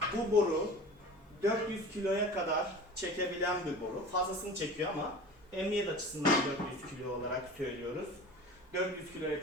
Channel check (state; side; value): normal; both; correlation 0.38